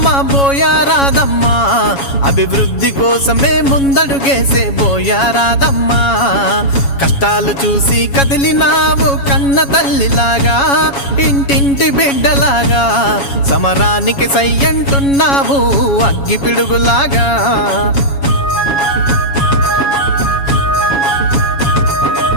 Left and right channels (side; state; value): right; late; 7.2 ms